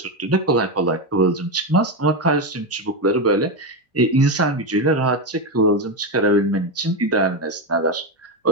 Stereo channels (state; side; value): normal; both; correlation 0.11